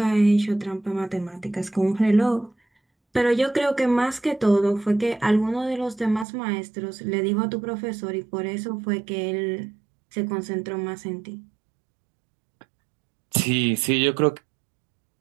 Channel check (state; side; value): drops out; left; at 6.2 s